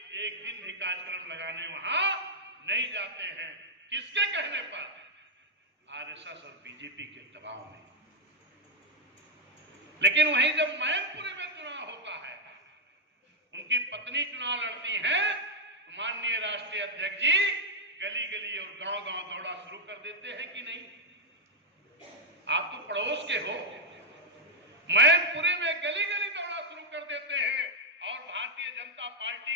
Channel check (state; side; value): normal; both; correlation -0.02